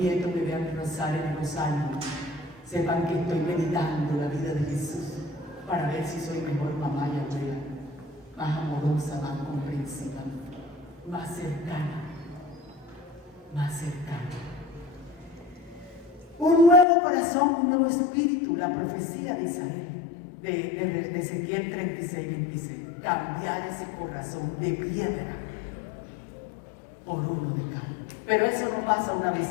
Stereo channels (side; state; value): right; drops out; at 16.9 s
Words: nieto me vean rezar en los años, sepan que estoy meditando la vida de Jesús para ver si soy mejor mamá y abuela, más amorosa, más comprensiva, más cercana, más cercana. Un nuevo corazón, un nuevo espíritu, la profecía de Isabel, de Ezequiel 36:26. Cambiar ese corazón de piedra por uno de carne. Pero eso no pasa una